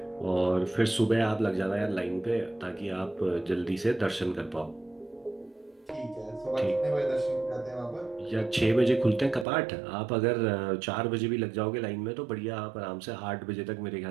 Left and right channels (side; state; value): left; drops out; at 9.5 s